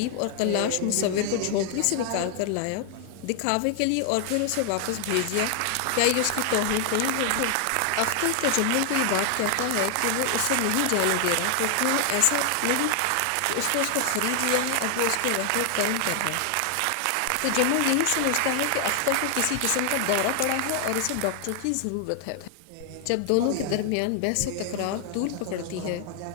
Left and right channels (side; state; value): both; different; correlation 0.00